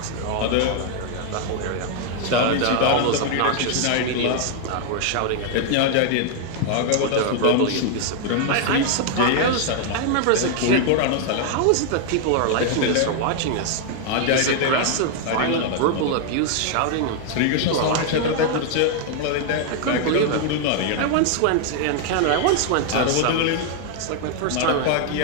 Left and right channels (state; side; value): different; both; correlation 0.00